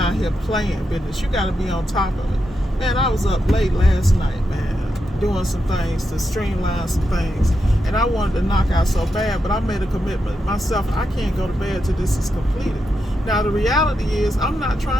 here playing business. You got to be on top of it. Man, I was up late last night, man, doing some things to streamline some things. And I wanted to knock out so bad, but I made a commitment myself. I can't go to bed till this is completed. Now, the reality is I'm not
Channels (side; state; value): both; normal; correlation 0.86